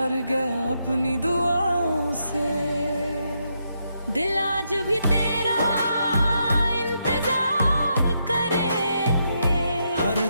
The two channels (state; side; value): inverted; both; correlation -0.80